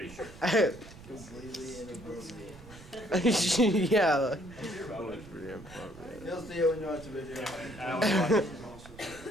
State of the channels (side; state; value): right; noise; rumble, 18 dB below the sound